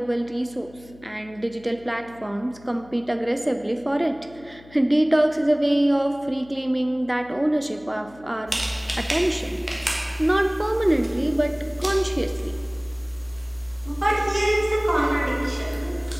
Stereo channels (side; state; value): left; noise; hum, 23 dB below the sound